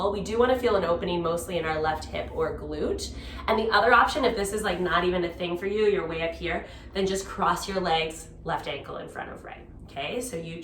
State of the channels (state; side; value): identical; both; correlation 1.00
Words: We do want to feel an opening mostly in our left hip or glute. And the other option, if this is like not even a thing for you, you're way up here, then just cross your legs, left ankle in front of right. Okay, so you